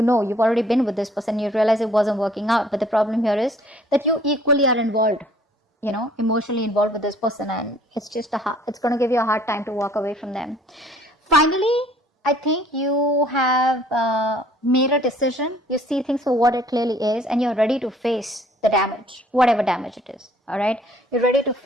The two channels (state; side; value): normal; both; correlation 0.57